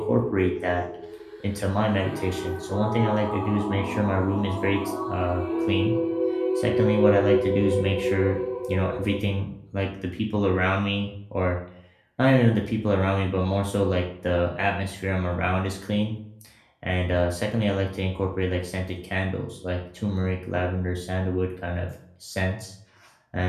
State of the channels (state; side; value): identical; both; correlation 1.00